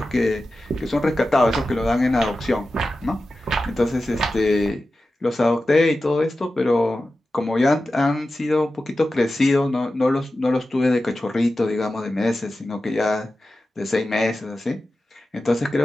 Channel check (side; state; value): both; normal; correlation 0.93